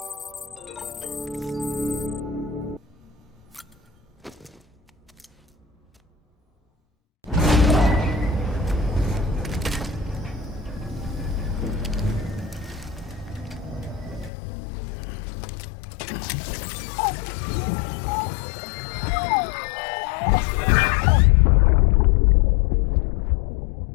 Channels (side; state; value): right; drops out; at 14.3 s